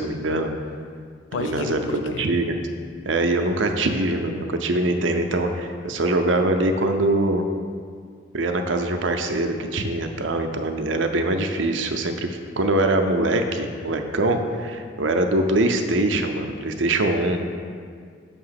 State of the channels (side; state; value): both; normal; correlation 0.25